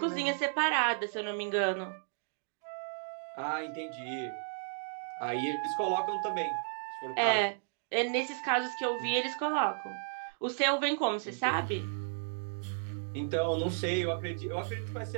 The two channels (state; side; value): silent; left; digital silence